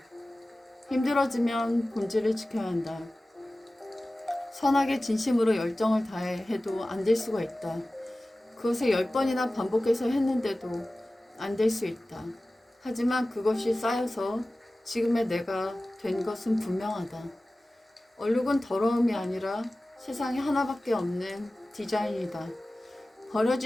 힘들어지면 본질을 지켜야 한다. 선하게 진심으로 열정을 다해 해도 안 될 수가 있다. 그것을 10번이나 반복해서 했는데도 안 될 수 있다. 하지만 그것이 쌓여서 지금의 내가 된 것은 분명하다. 얼룩은 더러움이 아니라 세상에 하나밖에 없는 디자인이다.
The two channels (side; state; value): both; normal; correlation 0.97